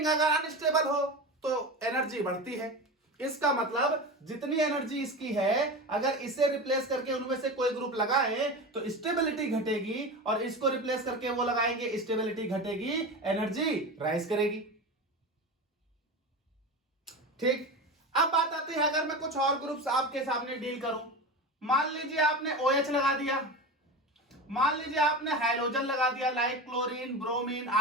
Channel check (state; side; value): normal; both; correlation 0.26